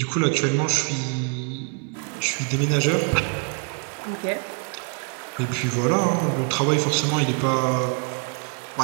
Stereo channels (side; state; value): left; quieter; 36.4 dB